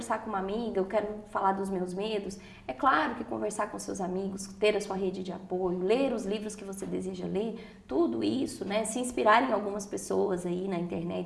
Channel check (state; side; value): identical; both; correlation 1.00